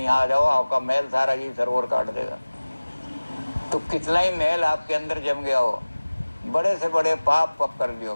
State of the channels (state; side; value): inverted; both; correlation -1.00